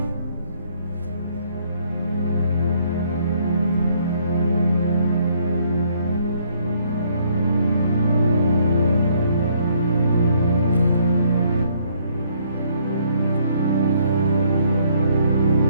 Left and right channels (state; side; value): inverted; both; correlation -0.66